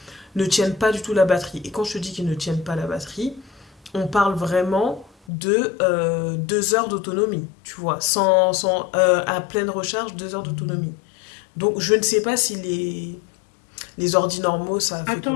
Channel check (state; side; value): drops out; right; at 5.1 s